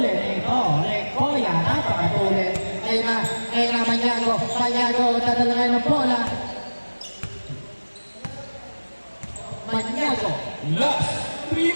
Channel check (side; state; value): both; inverted; correlation -1.00